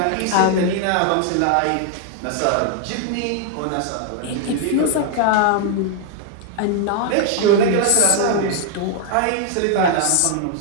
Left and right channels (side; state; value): both; different; correlation 0.00